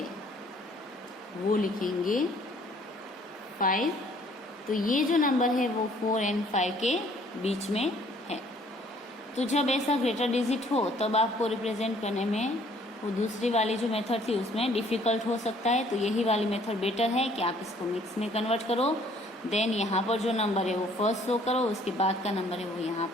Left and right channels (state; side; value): normal; both; correlation 0.59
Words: वो लिखेंगे 5। तो ये जो नंबर है वो 4 और 5 के बीच में है। तो जब ऐसा ग्रेटर डिजिट हो तब आपको रिप्रेजेंट करने में वो दूसरी वाली जो मेथड थी उसमें डिफ़िकल्ट हो सकता है। तो यही वाली मेथड बेटर है कि आप इसको मिक्स में कन्वर्ट करो, देन यहाँ पर जो नंबर है वो फर्स्ट शो करो, उसके बाद का नंबर है वो यहाँ